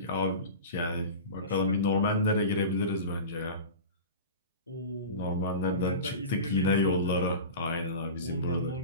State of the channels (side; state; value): both; inverted; correlation -0.31